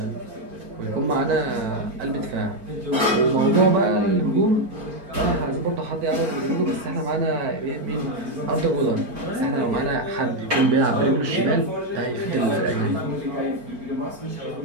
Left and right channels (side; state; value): left; late; 4.4 ms